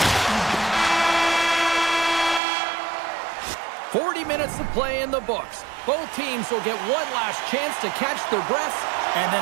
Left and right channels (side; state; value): left; drops out; at 2.4 s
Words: 40 minutes of play in the books. Both teams will get one last chance to catch their breaths, and